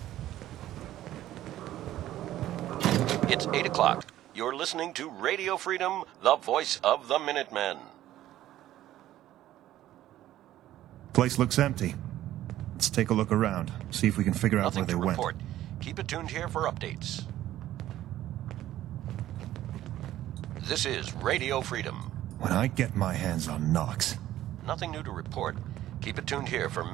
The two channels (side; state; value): left; quieter; 13.6 dB